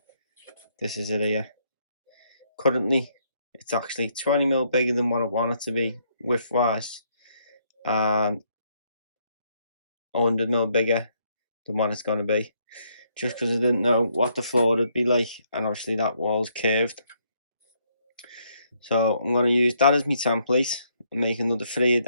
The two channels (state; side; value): inverted; both; correlation -0.72